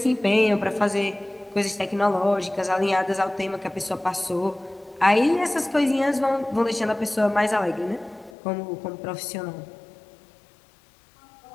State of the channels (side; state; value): right; drops out; at 8.3 s